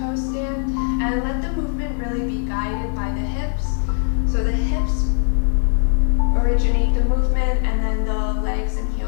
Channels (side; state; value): right; silent; digital silence